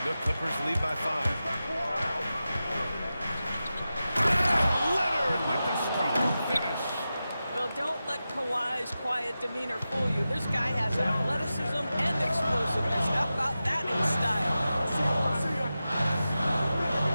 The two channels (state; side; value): inverted; both; correlation -0.93